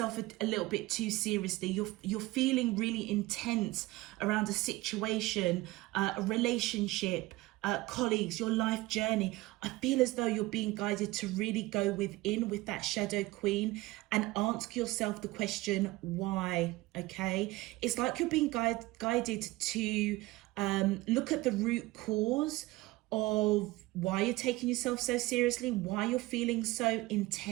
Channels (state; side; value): quieter; left; 19.8 dB